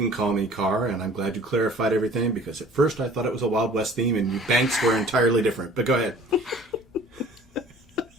call me Carr, and I'm glad you clarified everything, because at first I thought it was a Wild West theme, and banks were entirely different. But go ahead.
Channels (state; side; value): normal; both; correlation 0.49